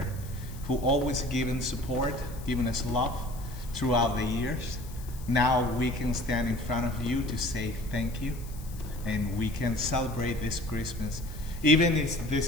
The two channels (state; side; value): noise; left; hiss, 19 dB below the sound